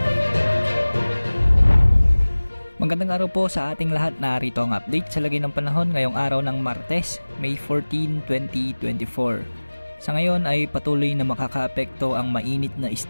Magandang araw po sa ating lahat. Narito ang update sa lagay ng panahon ngayong araw ng Martes, May 14, 2024. Sa ngayon ay patuloy na makakaapekto ang mainit na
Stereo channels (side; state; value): both; inverted; correlation -1.00